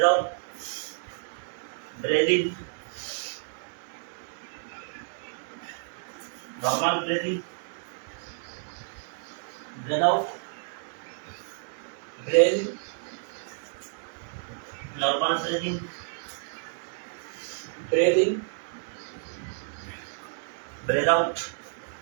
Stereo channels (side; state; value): left; silent; digital silence